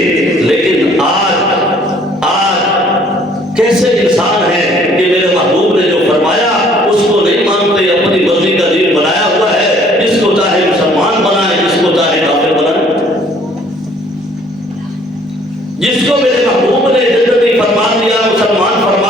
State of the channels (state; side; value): normal; both; correlation 0.59